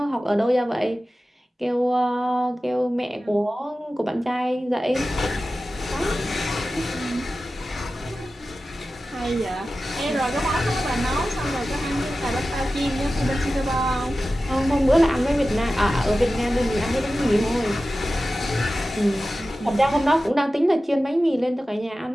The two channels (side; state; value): both; normal; correlation 0.94